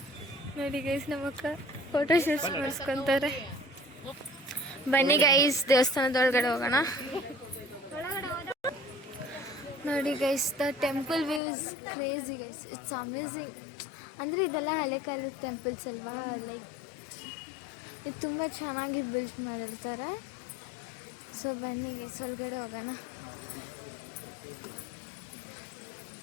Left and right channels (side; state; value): right; drops out; at 11.4 s